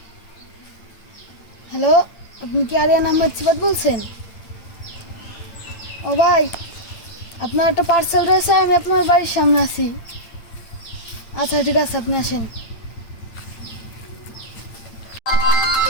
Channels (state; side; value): late; right; 8.9 ms